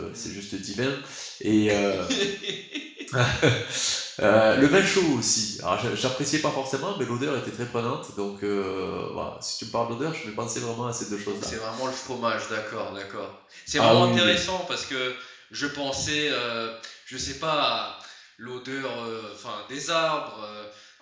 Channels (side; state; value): both; identical; correlation 1.00